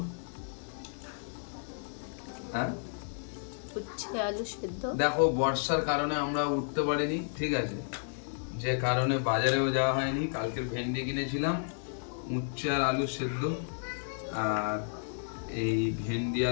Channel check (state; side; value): silent; right; digital silence